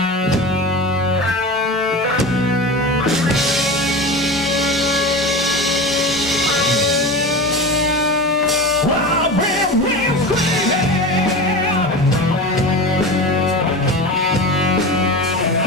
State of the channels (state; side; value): normal; both; correlation 0.28